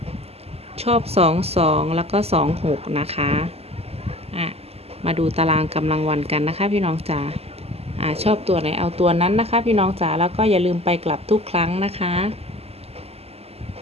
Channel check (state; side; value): late; left; 0.29 ms